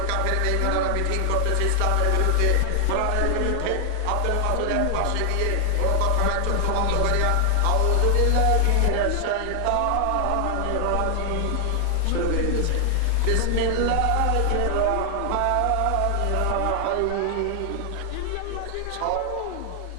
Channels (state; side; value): different; both; correlation 0.00